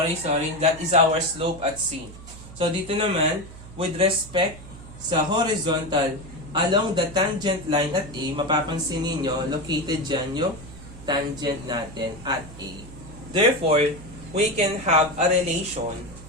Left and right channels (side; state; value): right; noise; hum, 16 dB below the sound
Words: That is our slope at C. So, dito naman, with respect sa horizontal, along the tangent line at A, mapapansin ninyo, located dyan yung tangent natin at A. Therefore, we can have a relation